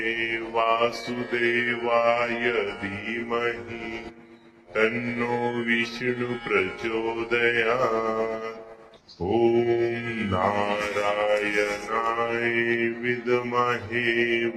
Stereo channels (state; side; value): identical; both; correlation 1.00